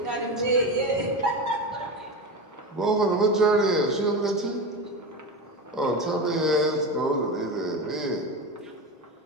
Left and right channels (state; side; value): normal; both; correlation 0.22